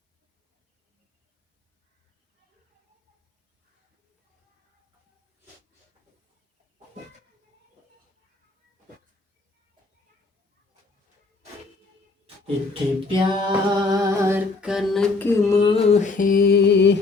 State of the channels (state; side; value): quieter; right; 3.6 dB